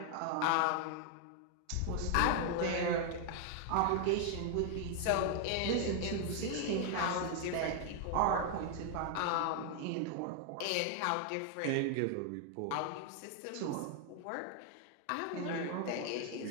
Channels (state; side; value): different; both; correlation 0.00